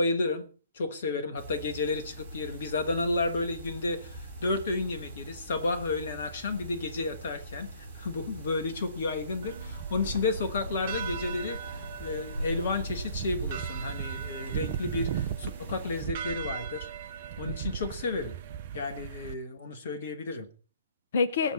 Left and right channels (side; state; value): both; inverted; correlation -0.60